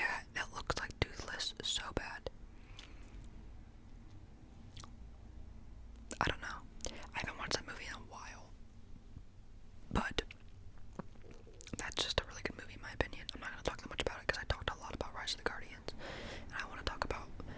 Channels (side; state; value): both; identical; correlation 1.00